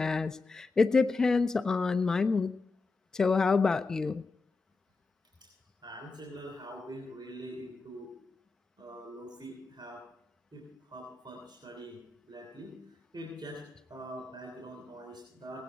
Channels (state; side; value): quieter; right; 3.9 dB